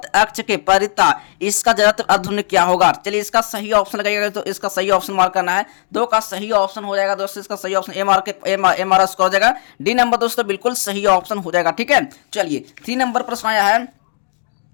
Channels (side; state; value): right; silent; digital silence